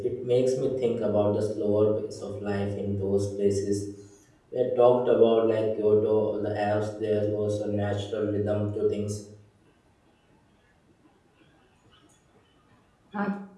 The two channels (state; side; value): identical; both; correlation 1.00